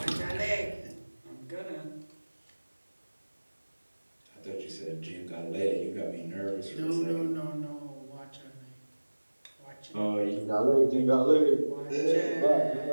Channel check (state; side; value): inverted; both; correlation -1.00